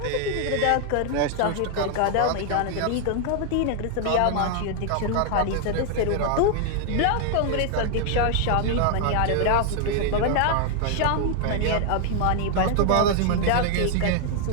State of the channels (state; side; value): different; both; correlation 0.00